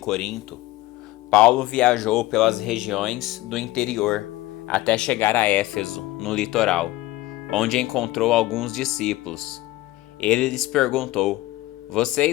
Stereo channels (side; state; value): right; quieter; 17.9 dB